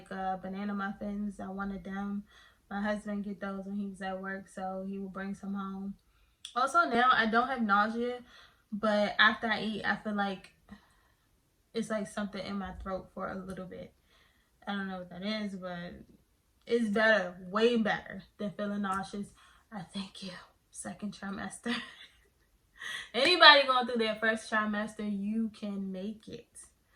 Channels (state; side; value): identical; both; correlation 1.00